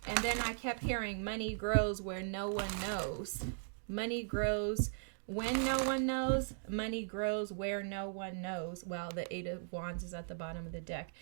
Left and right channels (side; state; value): left; silent; digital silence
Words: And then I kept hearing money grows where no one knows. Money grows when no one knows. Money grows where no one knows. Well, the Eight of Wands is at the bottom of the deck.